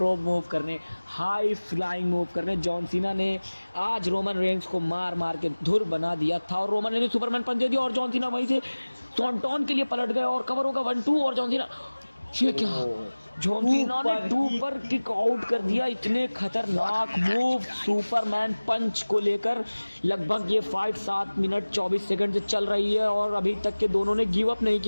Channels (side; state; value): both; inverted; correlation -1.00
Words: रोप मूव करने, हाई फ्लाइंग मूव करने। जॉन सीना ने आज रोमन रेंज को मार मार के धुर बना दिया था और रोमन रेंज ने सुपरमैन पंच दे दिया और जॉन सीना वहीं से सॉन्टॉन के लिए पलट गए और कवर होगा 1-2 और जॉन सीना, ये क्या, जॉन सीना ने 2 पर किक आउट कर दिया। इतने खतरनाक मूव सुपरमैन पंच को लेकर लगभग ये फाइट 7 मिनट 24 सेकंड से चल रही है और अभी तक के दोनों ने गिव अप नहीं